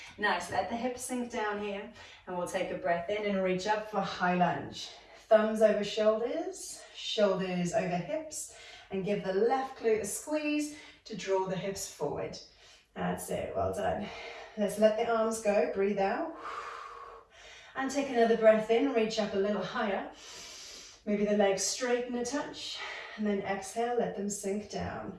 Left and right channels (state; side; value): identical; both; correlation 1.00